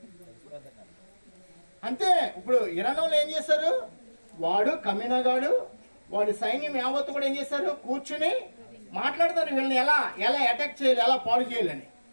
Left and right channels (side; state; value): both; inverted; correlation -1.00